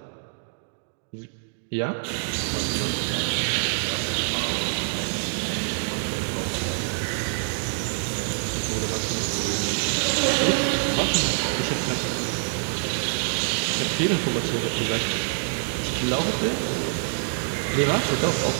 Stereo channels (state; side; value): silent; left; digital silence